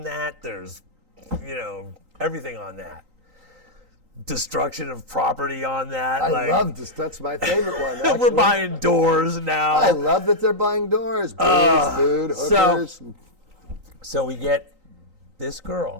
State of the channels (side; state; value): left; late; 3.9 ms